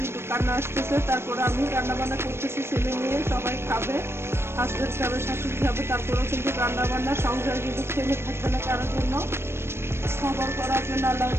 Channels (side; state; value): left; late; 0.12 ms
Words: কিন্তু কান্না আসতেছে। তারপরে আমি রান্না বান্না করতেছি, ছেলে নিয়ে সবাই খাবে, হাজবেন্ড খাবে, শাশুড়ি খাবে। তারপরেও কিন্তু রান্না বান্না সংসার কিন্তু থেমে থাকবে না কারোর জন্য। সবর করার জন্য আল্লাহ